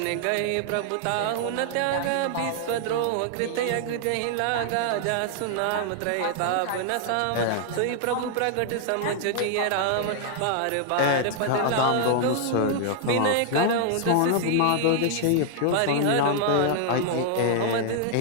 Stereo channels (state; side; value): different; both; correlation -0.01